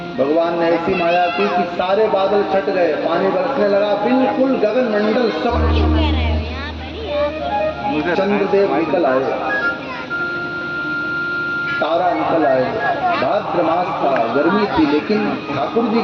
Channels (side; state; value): both; identical; correlation 1.00